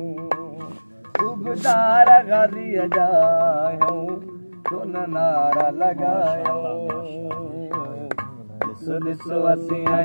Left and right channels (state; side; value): inverted; both; correlation -1.00